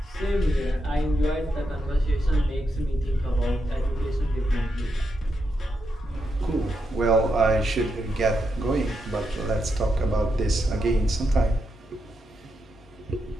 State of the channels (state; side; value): normal; both; correlation 0.84